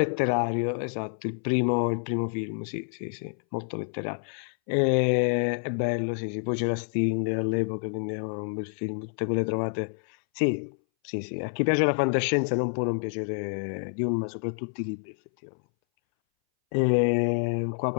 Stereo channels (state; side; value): silent; right; 59 dB below the other